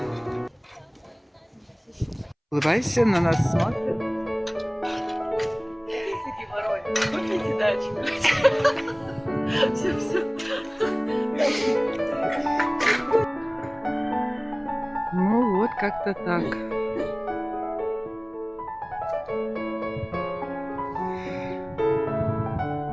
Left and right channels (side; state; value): both; identical; correlation 1.00